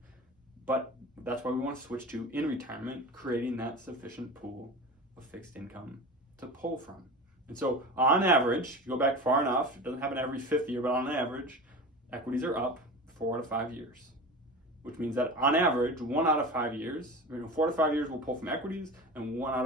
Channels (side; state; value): both; normal; correlation 0.31